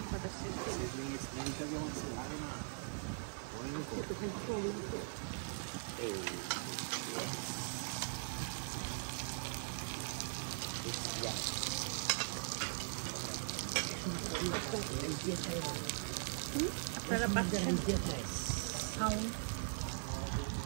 আপনারা পাচ্ছেন সাউন্ড।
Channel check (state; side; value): silent; left; 51 dB below the other